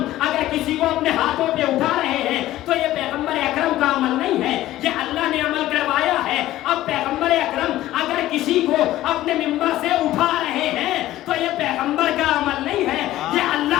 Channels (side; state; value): right; quieter; 14.9 dB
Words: اگر کسی کو اپنے ہاتھوں پہ اٹھا رہے ہیں تو یہ پیغمبر اکرم کا عمل نہیں ہے، یہ اللہ نے عمل کروایا ہے۔ اب پیغمبر اکرم اگر کسی کو اپنے ممبر سے اٹھا رہے ہیں تو یہ پیغمبر کا عمل نہیں ہے، یہ